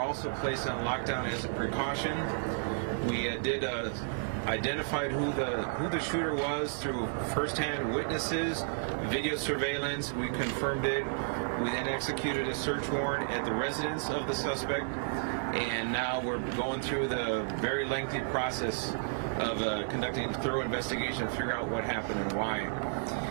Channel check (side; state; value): left; silent; digital silence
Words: also placed on lockdown as a precaution. We identified who the shooter was through first-hand witnesses, video surveillance. We confirmed it. We then executed a search warrant at the residence of the suspect, and now we're going through the very lengthy process of conducting a thorough investigation to figure out what happened and why.